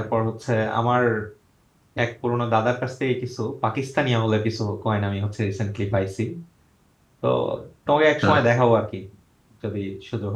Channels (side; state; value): both; identical; correlation 1.00